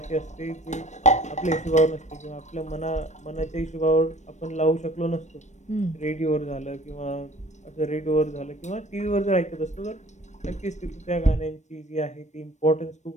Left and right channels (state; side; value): late; right; 0.34 ms